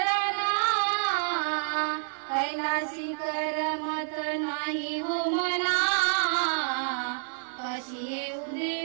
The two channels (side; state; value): left; silent; digital silence